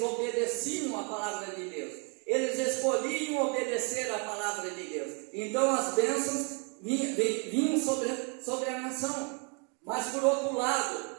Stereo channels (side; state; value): left; quieter; 36.3 dB